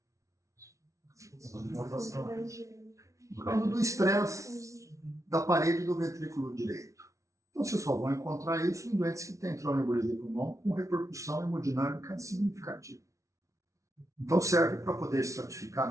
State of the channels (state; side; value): late; left; 0.15 ms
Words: Por causa do estresse da parede do ventrículo direito. Então, vocês só vão encontrar isso em doentes que têm tromboembolia de pulmão com repercussão hemodinâmica significativa. Então, serve para poder